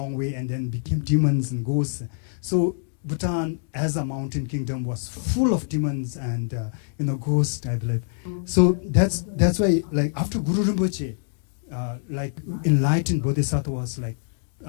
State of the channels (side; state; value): right; silent; digital silence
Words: way and then became demons and ghosts. So Bhutan, as a mountain kingdom, was full of demons and, ghosts, I believe. So that's why, like, after Guru Rinpoche, enlightened bodhisattvas like